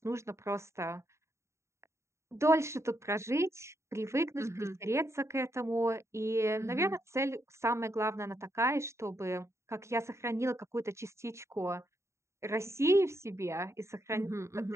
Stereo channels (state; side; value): late; left; 0.14 ms